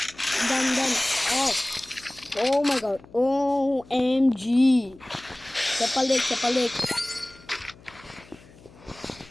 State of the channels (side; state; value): left; noise; hum, 24 dB below the sound